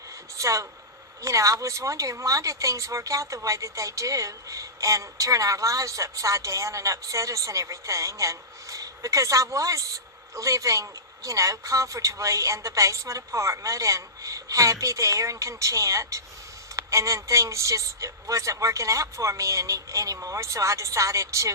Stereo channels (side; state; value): both; normal; correlation -0.19